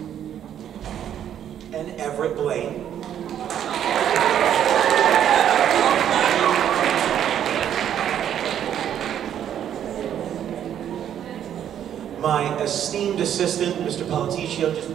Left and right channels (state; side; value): quieter; left; 10.0 dB